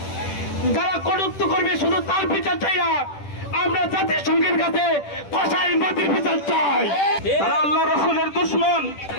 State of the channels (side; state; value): right; late; 10 ms